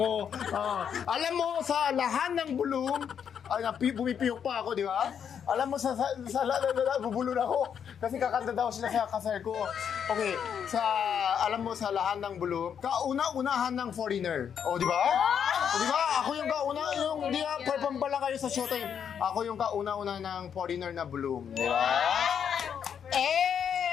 Alam mo, sa lahat ng bulong, bumipiyok pa ako, di ba? Alam mo, bubulon ako. Kasi kakanta daw sila sa kasal ko. Okay, alam mo, sa lahat ng bulong, kauna-unahan ng foreigner. Di ba? Di ba? Ako yung di ba, perform pa lang kayo sa showtime. Ako yung kauna-una ng foreigner na bulong. Di ba?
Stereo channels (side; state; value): right; quieter; 7.9 dB